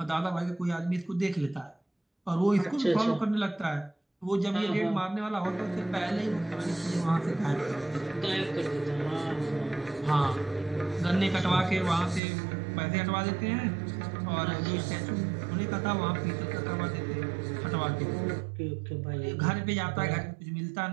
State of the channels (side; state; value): left; drops out; at 12.2 s